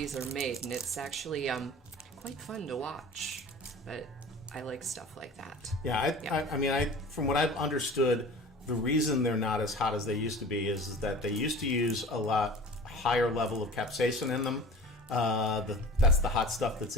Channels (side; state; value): both; normal; correlation 0.39